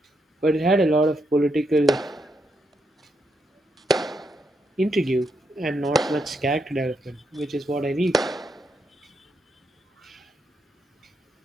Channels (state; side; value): normal; both; correlation 0.80